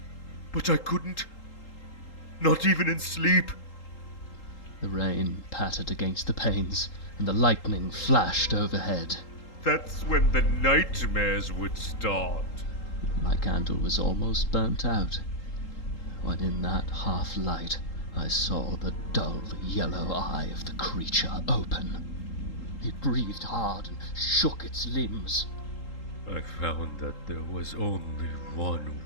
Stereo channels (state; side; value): late; right; 3.8 ms